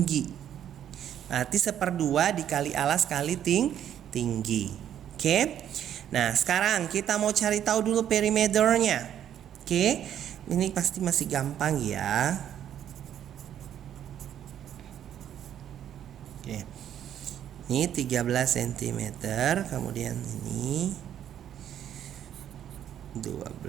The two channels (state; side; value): quieter; left; 10.2 dB